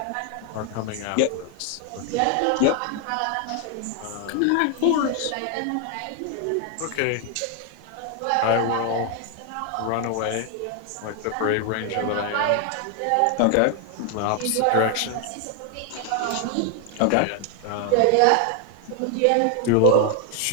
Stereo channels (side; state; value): both; different; correlation 0.01